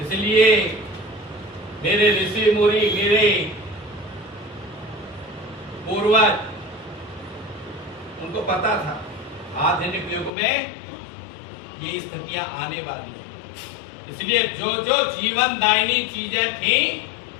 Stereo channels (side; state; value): right; drops out; at 10.3 s